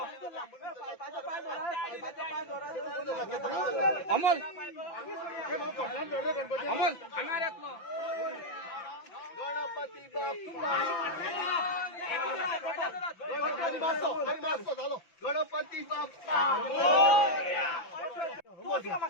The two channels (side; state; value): right; late; 5.9 ms